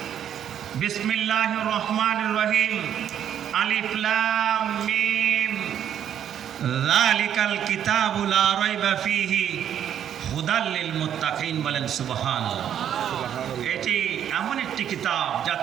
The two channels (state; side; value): quieter; left; 9.7 dB